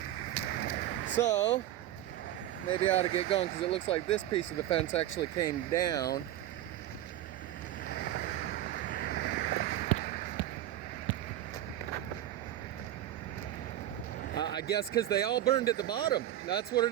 So maybe I ought to get going because it looks like this piece of the fence actually came down. I guess because they all burned at the bottom. That's what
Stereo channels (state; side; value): quieter; left; 13.1 dB